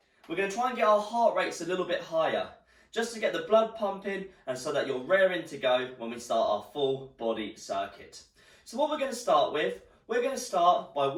We're going to try and get our heart rates a little bit higher, just to get the blood pumping and so that you're raring to go when we start our full body circuit. So what we're going to start with, we're going to start by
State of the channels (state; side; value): identical; both; correlation 1.00